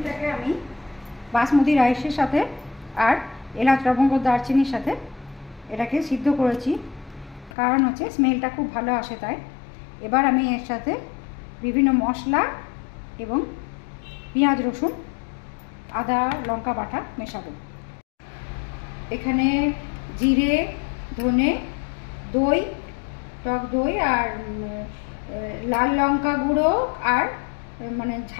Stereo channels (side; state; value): right; drops out; at 7.5 s